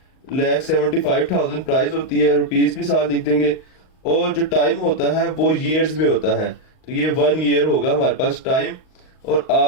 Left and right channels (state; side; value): late; right; 38 ms